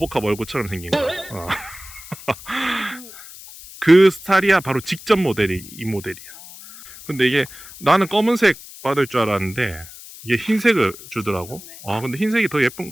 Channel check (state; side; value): noise; left; hiss, 17 dB below the sound